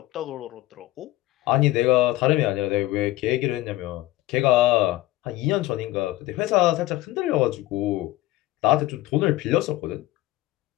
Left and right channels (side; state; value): right; quieter; 16.9 dB